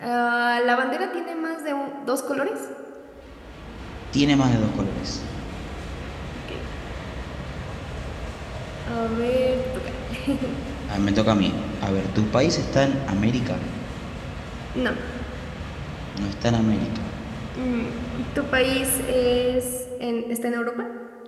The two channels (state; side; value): identical; both; correlation 1.00